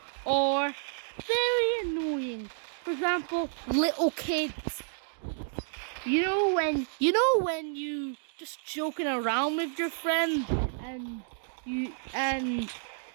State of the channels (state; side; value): silent; left; digital silence